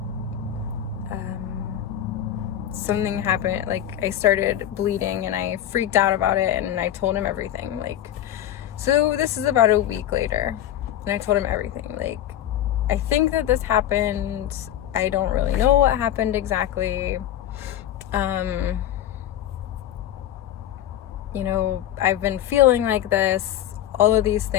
something happened. Like, I started bleeding, and I freaked out about it, and I told him everything. Like, so this is about a week later, and I told him everything. Like, I think that this happened. I don't really know what happened exactly. You know, I've been feeling like this, all of these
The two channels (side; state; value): right; quieter; 11.5 dB